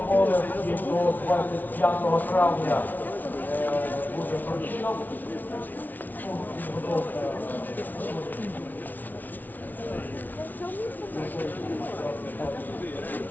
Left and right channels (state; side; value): late; right; 0.082 ms